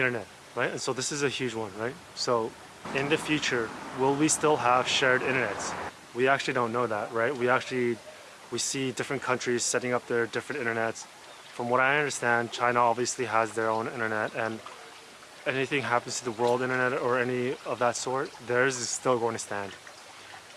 right? And so this is a huge one, right? So in the future, will we still have shared internets? We actually don't know that, right? We see different countries setting up their different internets. From what I understand, China obviously has their own internet, and anything happens to the world internet or any of that sort, theirs is still going to stand.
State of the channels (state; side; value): identical; both; correlation 1.00